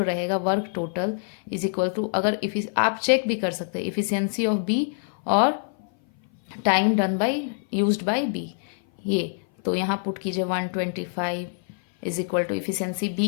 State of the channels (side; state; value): right; silent; 57 dB below the other